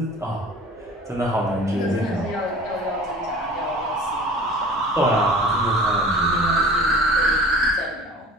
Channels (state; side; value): normal; both; correlation 0.43